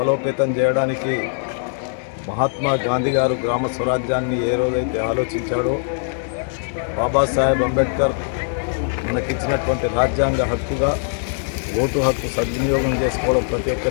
చేయడానికి మహాత్మా గాంధీ గారు గ్రామ స్వరాజ్యాన్ని ఏ రోజైతే ఆలోచించాడో, బాబాసాహెబ్ అంబేద్కర్ మనకిచ్చినటువంటి రాజ్యాంగ హక్కుగా ఓటు హక్కు సద్వినియోగం చేసుకోవడం ప్రతి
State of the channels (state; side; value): silent; right; digital silence